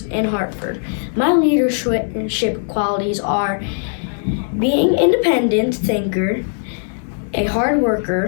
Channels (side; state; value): right; silent; digital silence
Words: in Hartford. My leadership qualities are being an independent thinker, a hard